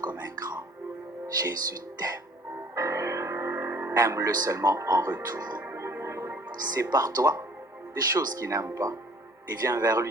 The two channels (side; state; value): both; normal; correlation 0.54